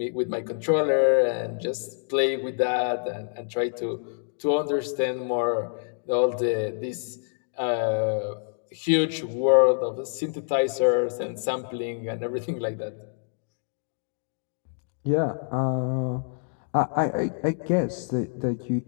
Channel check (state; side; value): silent; right; digital silence